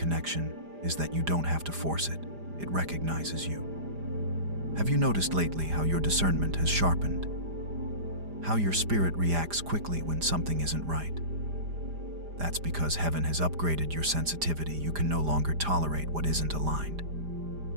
is that you don't have to force it. It recognizes you. Have you noticed lately how your discernment has sharpened? How your spirit reacts quickly when something isn't right? That's because heaven has upgraded your sensitivity. You can no longer tolerate what isn't aligned.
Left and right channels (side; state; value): left; late; 5.0 ms